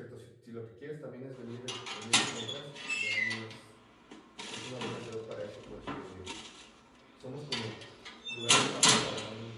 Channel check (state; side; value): identical; both; correlation 1.00